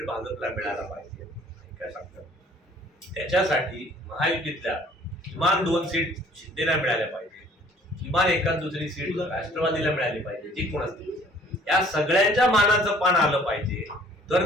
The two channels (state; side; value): normal; both; correlation 0.56